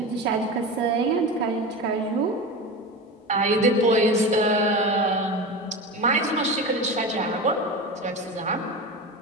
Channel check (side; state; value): both; normal; correlation 0.26